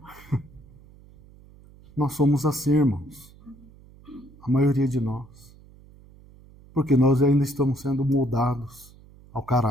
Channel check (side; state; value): right; noise; hum, 24 dB below the sound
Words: Nós somos assim, irmãos. A maioria de nós. Porque nós ainda estamos sendo moldados ao